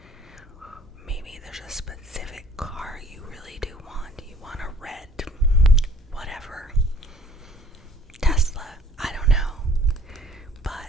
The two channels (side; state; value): both; normal; correlation 0.52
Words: Maybe there's a specific car you really do want. You want a red, whatever, Tesla, I don't know.